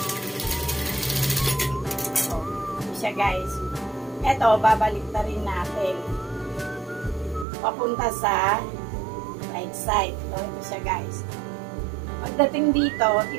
Guys, eto babalik na rin natin papunta sa right side. Ito siya guys. Pagdating dito,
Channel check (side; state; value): left; drops out; at 7.5 s